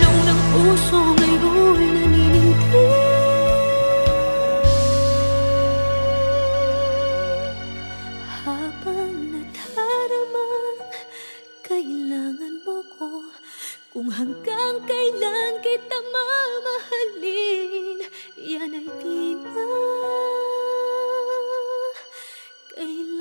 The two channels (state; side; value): inverted; both; correlation -1.00